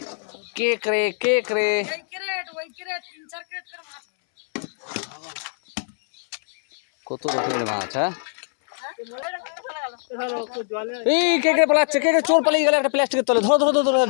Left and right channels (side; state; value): right; silent; 63 dB below the other